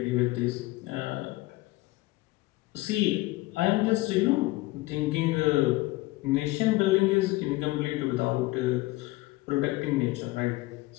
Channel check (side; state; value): right; quieter; 20.2 dB